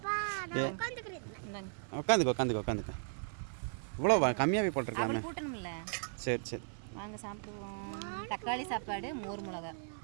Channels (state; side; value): silent; left; 53 dB below the other